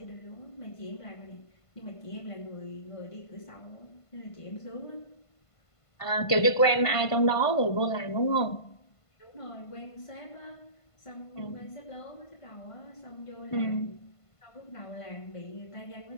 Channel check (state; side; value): late; right; 1.5 ms